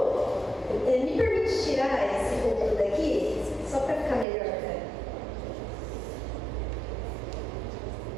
me permite tirar esse púlpito daqui, só para ficar melhor, cara.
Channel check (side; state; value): left; drops out; at 4.2 s